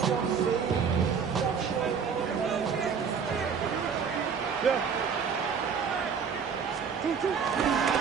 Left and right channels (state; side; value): quieter; left; 6.4 dB